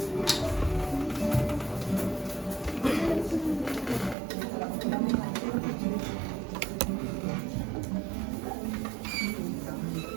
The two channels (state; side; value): drops out; left; at 4.2 s